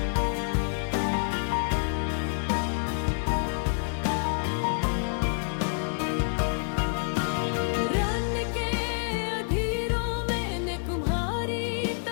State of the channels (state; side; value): silent; right; digital silence